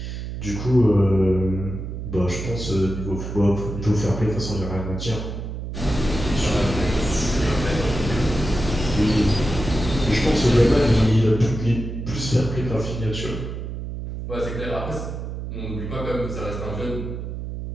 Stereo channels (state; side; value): noise; right; hum, 6 dB below the sound